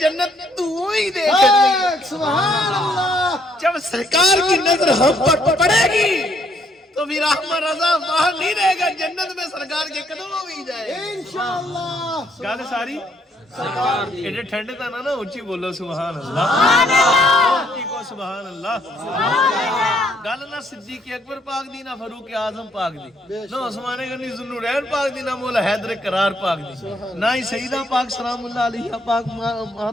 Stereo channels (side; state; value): both; normal; correlation 0.69